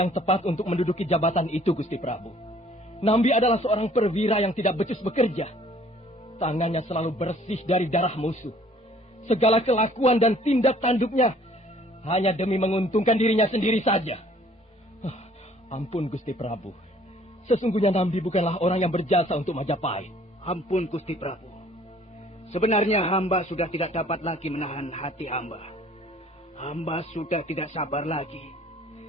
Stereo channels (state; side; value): normal; both; correlation 0.57